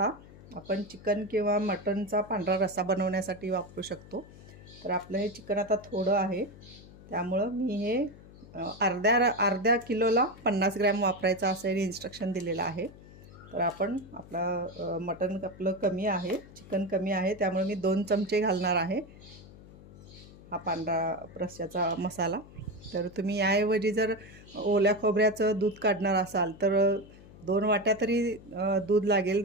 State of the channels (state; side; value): noise; left; hum, 19 dB below the sound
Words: आपण चिकन किंवा मटनचा पांढरा रस्सा बनवण्यासाठी वापरू शकतो. तर आपलं हे चिकन आता थोडं आहे, त्यामुळं मी हे अर्ध्या किलोला 50 ग्रॅम वापरायचं असं इन्स्ट्रक्शन दिलेलं आहे. तर आपण मटन आपलं कमी आहे, चिकन कमी आहे, त्यामुळे मी 2 चमचे घालणार आहे हा पांढरा रस्स्याचा मसाला. तर तुम्ही याऐवजी जर ओल्या खोबऱ्याचं दूध काढणार असाल तर 2 वाट्या तरी दूध लागेल,